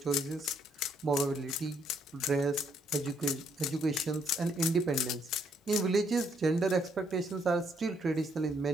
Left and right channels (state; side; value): normal; both; correlation 0.71